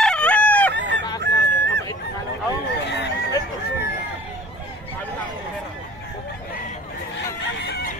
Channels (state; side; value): normal; both; correlation 0.48